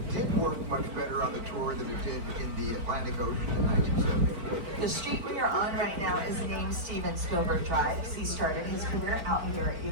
did work much better on the tour than it did in the Atlantic Ocean in 1973. The street we are on right now is named Steven Spielberg Drive. He started his career out here at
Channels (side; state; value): left; late; 4.4 ms